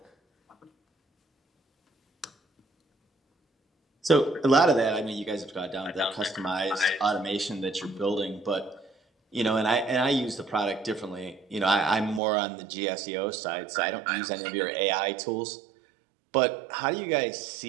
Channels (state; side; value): drops out; left; at 12.2 s